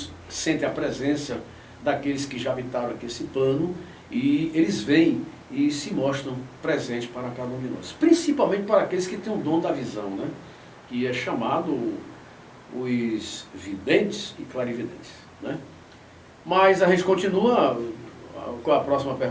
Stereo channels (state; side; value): identical; both; correlation 1.00